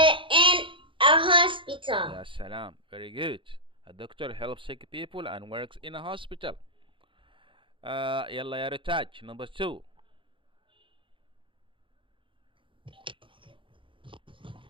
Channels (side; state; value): left; late; 0.25 ms